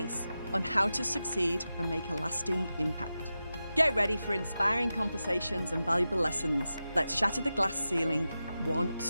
on how to succeed and make a lasting impact. Get ready for inspiring conversations and valuable lessons. Let's shatter the glass ceiling, one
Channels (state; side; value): inverted; both; correlation -0.92